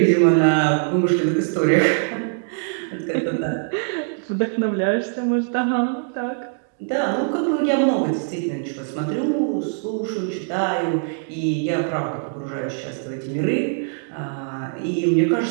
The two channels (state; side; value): silent; left; digital silence